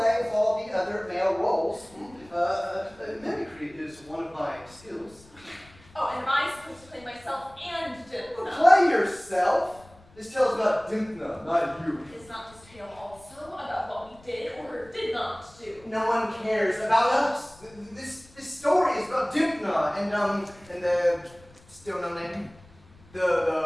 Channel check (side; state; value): left; noise; rumble, 26 dB below the sound